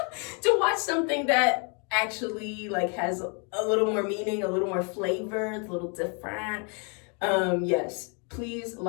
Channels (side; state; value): right; quieter; 36.8 dB